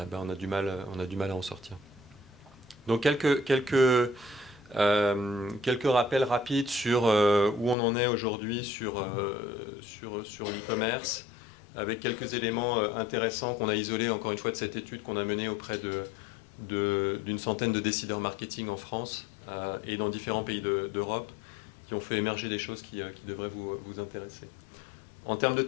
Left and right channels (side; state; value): right; drops out; at 7.8 s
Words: a du mal à en sortir. Donc quelques rappels rapides sur où on en est aujourd'hui sur l'e-commerce, avec quelques éléments intéressants qu'on a isolés encore une fois de cette étude qu'on a menée auprès d'une centaine de décideurs marketing en France et dans différents pays d'Europe, qui ont fait émerger des choses qui devraient vous intéresser. En termes de